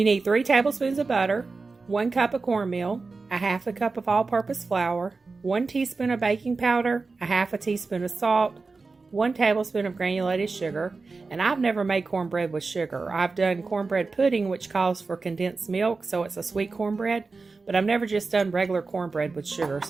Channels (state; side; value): quieter; left; 4.0 dB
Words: need 3 tablespoons of butter, 1 cup of cornmeal, a half a cup of all-purpose flour, 1 teaspoon of baking powder, a half a teaspoon of salt, 1 tablespoon of granulated sugar, and I've never made cornbread with sugar. I've done cornbread pudding, which calls for condensed milk, so it's a sweet cornbread, but I've never just done regular cornbread with sugar,